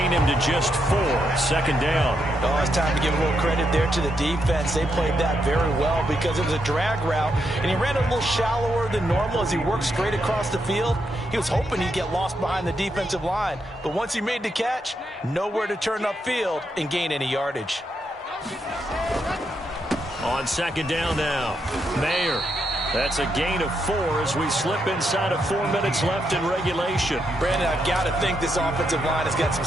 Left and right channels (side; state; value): both; normal; correlation 0.81